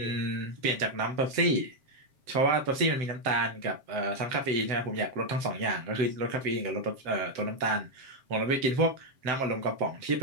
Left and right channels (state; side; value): late; left; 7.5 ms